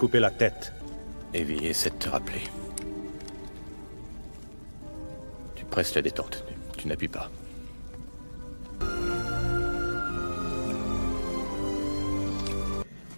la tête. Evie, essaie de te rappeler. Tu presses la détente. Tu n'appuies pas.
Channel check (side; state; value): both; inverted; correlation -1.00